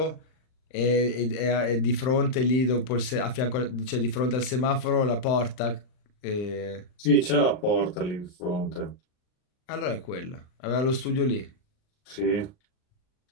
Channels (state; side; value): late; right; 39 ms